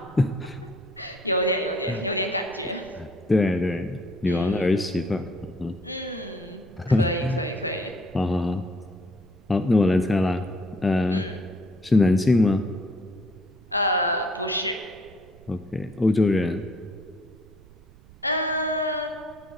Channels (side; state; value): right; noise; rumble, 24 dB below the sound